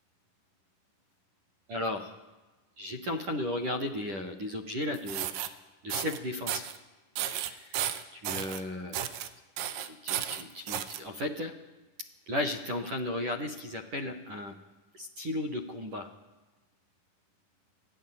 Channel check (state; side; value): late; left; 10 ms